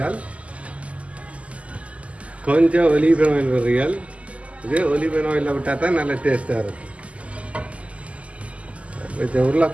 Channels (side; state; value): left; late; 0.064 ms